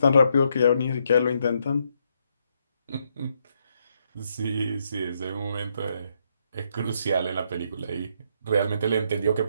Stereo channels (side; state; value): both; inverted; correlation -0.76